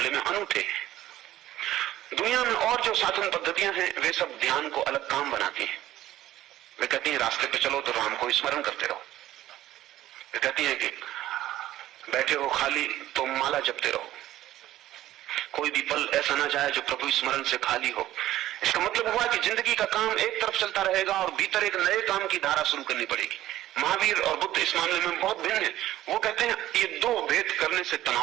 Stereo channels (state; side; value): quieter; left; 14.1 dB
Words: में अनूठे हैं। दुनिया में और जो साधन पद्धतियां हैं वे सब ध्यान को अलग काम बनाती हैं। वे कहती हैं रास्ते पे चलो तो राम को स्मरण करते रहो। वे कहती हैं कि बैठे हो खाली तो माला जपते रहो। कोई भी पल ऐसा ना जाए जो प्रभु स्मरण से खाली हो। इसका मतलब हुआ कि जिंदगी का काम एक तरफ चलता रहेगा और भीतर एक नए काम की धारा शुरू करनी पड़ेगी। महावीर और बुद्ध इस मामले में बहुत भिन्न है। वो कहते हैं ये दो भेद करने से